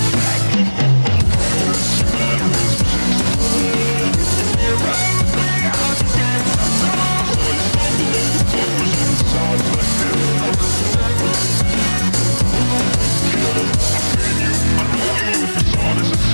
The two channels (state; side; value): inverted; both; correlation -1.00